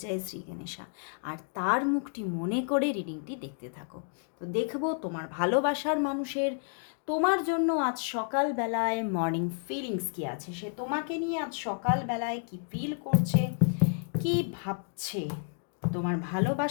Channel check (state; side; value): silent; right; 57 dB below the other